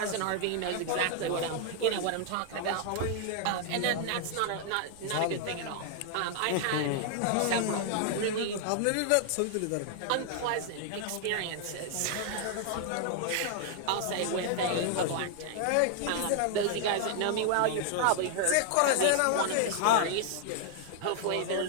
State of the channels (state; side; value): different; both; correlation 0.00